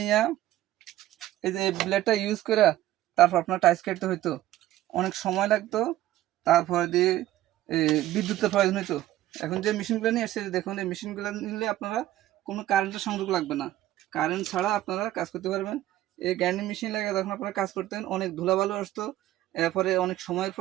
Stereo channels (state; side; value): quieter; left; 14.3 dB